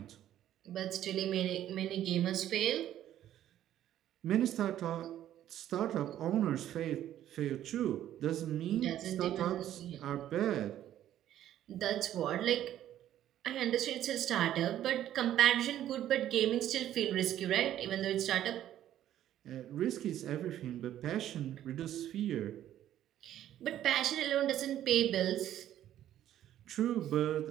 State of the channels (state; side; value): quieter; left; 11.9 dB